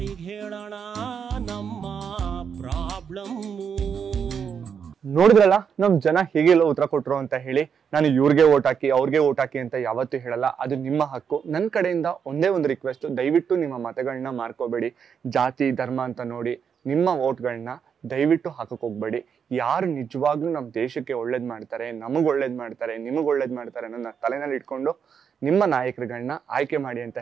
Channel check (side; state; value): left; quieter; 7.1 dB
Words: ಹೇಳೋಣ ನಮ್ಮ ಪ್ರಾಬ್ಲಮ್? ನೋಡಿದ್ರಲ್ಲ ನಮ್ ಜನ ಹೇಗೆಲ್ಲ ಉತ್ತರ ಕೊಟ್ರು ಅಂತ ಹೇಳಿ. ನಾನು ಇವ್ರಿಗೆ ಓಟ್ ಹಾಕಿ ಅವ್ರಿಗೆ ಓಟ್ ಹಾಕಿ ಅಂತ ಯಾವತ್ತೂ ಹೇಳಲ್ಲ, ಅದು ನಿಮ್ಮ ಹಕ್ಕು. ನನ್ನ ಕಡೆಯಿಂದ ಒಂದೇ ಒಂದು ರಿಕ್ವೆಸ್ಟ್, ದಯವಿಟ್ಟು ನಿಮ್ಮ ಮತಗಳನ್ನ ಮಾರ್ಕೋಬೇಡಿ. ಜಾತಿ ಧರ್ಮ ಅಂತ ನೋಡಿ ನಿಮ್ಮ ವೋಟ್ಗಳನ್ನ ದಯವಿಟ್ಟು ಹಾಕಕ್ ಹೋಗ್ಬೇಡಿ. ಯಾರು ನಿಜವಾಗ್ಲೂ ನಮ್ಮ ದೇಶಕ್ಕೆ ಒಳ್ಳೇದ್ ಮಾಡ್ತಾರೆ, ನಮಗ್ ಒಳ್ಳೇದ್ ಮಾಡ್ತಾರೆ, ನಿಮಗ್ ಒಳ್ಳೇದ್ ಮಾಡ್ತಾರೆ ಅನ್ನೋ ತಲೆನಲ್ಲಿ ಇಟ್ಕೊಂಡು ನಿಮ್ಮ ನಾಯಕರುಗಳನ್ನ ಆಯ್ಕೆ ಮಾಡಿ ಅಂತ